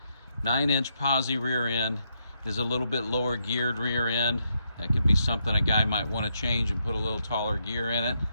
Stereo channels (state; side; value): inverted; both; correlation -0.79